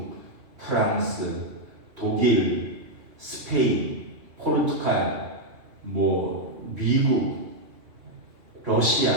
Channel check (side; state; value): left; late; 2.7 ms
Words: 프랑스, 독일, 스페인, 포르투갈, 뭐 미국, 러시아,